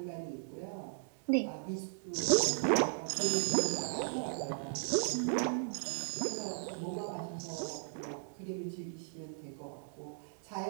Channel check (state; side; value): silent; left; 53 dB below the other